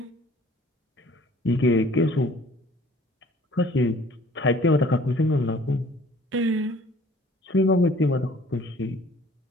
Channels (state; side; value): normal; both; correlation 0.54